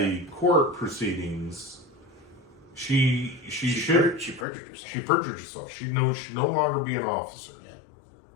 court proceedings, she perjured herself. She perjured herself. She should no longer be an officer.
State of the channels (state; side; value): drops out; right; at 4.5 s